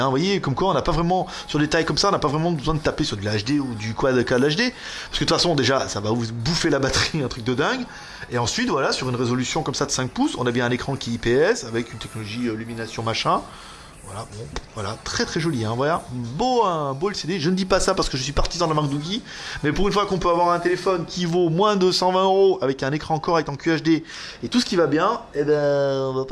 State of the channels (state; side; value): identical; both; correlation 1.00